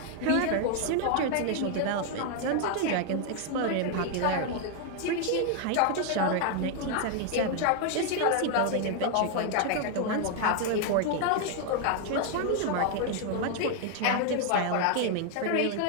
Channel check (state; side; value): different; both; correlation 0.00